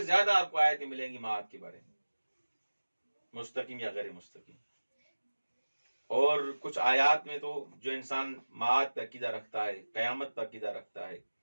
زیادہ آپ کو آیتیں ملیں گی معاد کے بارے میں، مستقیم یا غیر مستقیم. اور کچھ آیات میں تو جو انسان معاد پر عقیدہ رکھتا ہے، قیامت پر عقیدہ رکھتا ہے،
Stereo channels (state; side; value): inverted; both; correlation -1.00